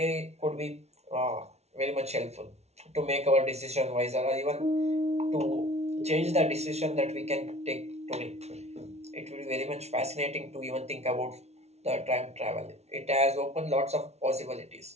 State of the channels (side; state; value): left; late; 0.31 ms